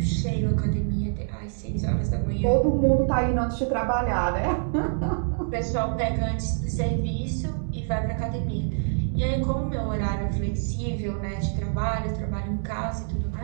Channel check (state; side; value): silent; left; digital silence